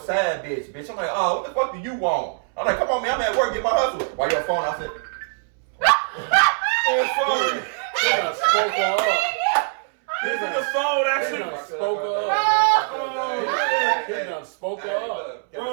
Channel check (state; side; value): silent; left; 63 dB below the other